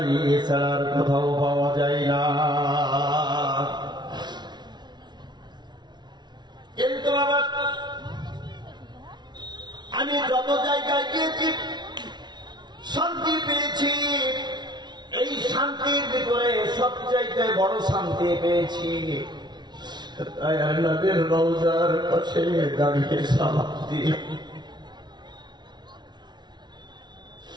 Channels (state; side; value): late; left; 0.20 ms